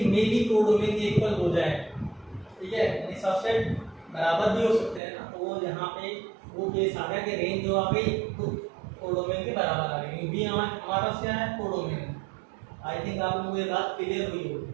में भी कोडोमेन के इक्वल हो जाए, ठीक है। यानी सबसेट बराबर भी हो सकते हैं ना, तो वो यहाँ पे वो केस आ गया कि रेंज जो आ गई तो कोडोमेन के बराबर आ गई। बी हमारा पास क्या है, कोडोमेन। आई थिंक आप लोगों को ये बात क्लियर हुई होगी।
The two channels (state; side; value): drops out; left; at 5.0 s